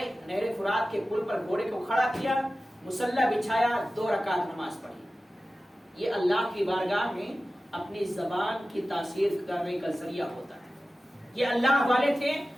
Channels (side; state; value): both; normal; correlation 0.95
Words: نہر فرات کے پل پر گھوڑے کو کھڑا کیا، مصلی بچھایا، 2 رکعت نماز پڑھی۔ یہ اللہ کی بارگاہ میں اپنی زبان کی تاثیر کرنے کا ذریعہ ہوتا ہے۔ یہ اللہ والے تھے